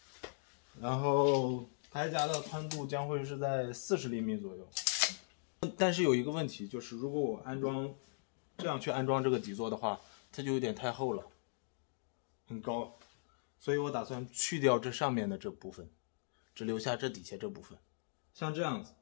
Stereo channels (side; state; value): right; silent; digital silence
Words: 然后台夹的宽度将会是在40厘米左右，但是有一个问题，就是如果我这样去安装这个底座的话，它就有点太厚了，很高，所以我打算去掉这上面的这部分，只留下这底下这部分，像这样子，